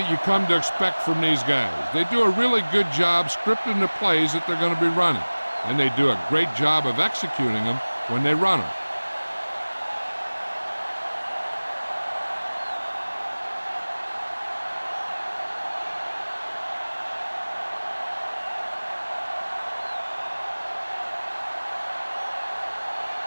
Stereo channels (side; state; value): both; inverted; correlation -1.00